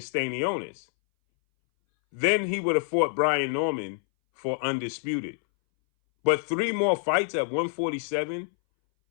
Then he would have fought Brian Norman for undisputed. But 3 more fights at 147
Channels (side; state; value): right; silent; 60 dB below the other